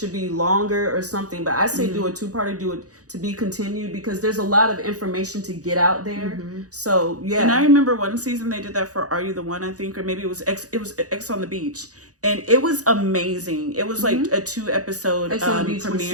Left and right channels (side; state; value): left; late; 0.67 ms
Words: be longer or something. But I say do a 2-parter, do it to be continued, because there's a lot of information to get out there. So yeah. And I remember one season they did that for Are You the One, I think, or maybe it was X on the Beach, and it was amazing. It was like a 2-episode X on the Beach